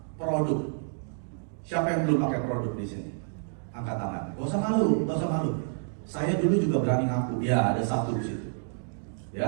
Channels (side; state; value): left; silent; digital silence